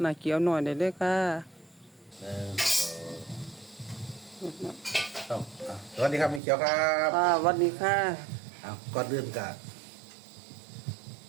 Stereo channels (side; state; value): left; drops out; at 6.4 s